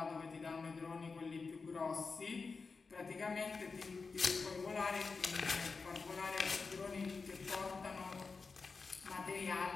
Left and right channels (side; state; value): right; quieter; 4.5 dB